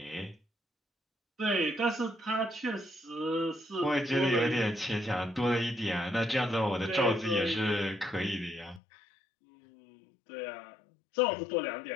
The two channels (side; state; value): right; drops out; at 8.8 s